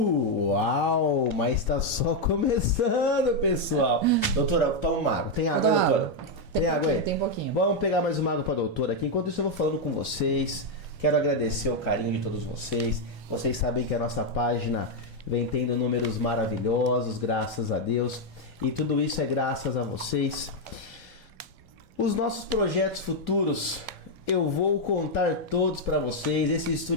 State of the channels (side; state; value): both; normal; correlation 0.01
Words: mas tá só começando, pessoal. Doutora, toma uma água. Tem água, doutora? Tem água aí? Tem pouquinho. Vamos pegar mais uma água pra doutora aqui. Enquanto isso eu vou falando com vocês. Quero agradecer o carinho de todos vocês. Vocês sabem que a nossa página vem tendo números maravilhosos, graças a Deus. E tudo isso é graças a vocês. Os nossos projetos futuros, eu vou contar todos pra vocês. Esse